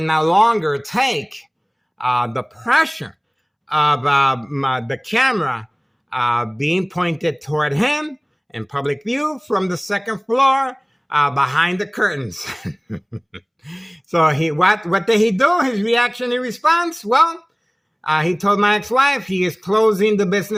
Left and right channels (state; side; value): identical; both; correlation 1.00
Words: no longer take the pressure of the camera being pointed toward him in public view from the second floor behind the curtains. So what did he do? His reaction in response? Well, he told my ex-wife he is closing the